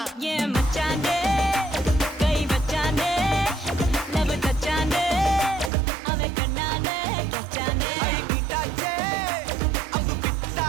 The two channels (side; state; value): left; drops out; at 5.7 s